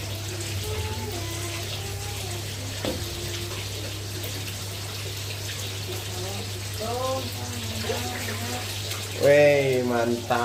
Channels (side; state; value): both; identical; correlation 1.00